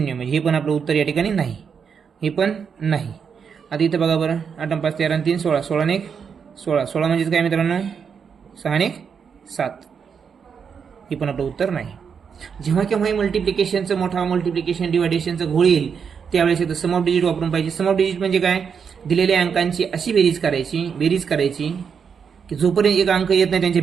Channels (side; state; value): left; quieter; 6.6 dB